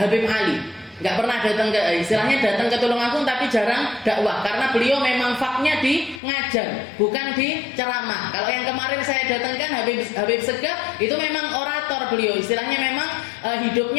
Habib Ali. Nggak pernah datang ke, istilahnya datang ke Tulungagung, tapi jarang dakwah, karena beliau memang faknya di ngajar, bukan di ceramah. Kalau yang kemarin saya datangkan Habib Segaf, itu memang orator beliau, istilahnya memang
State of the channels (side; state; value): right; drops out; at 6.2 s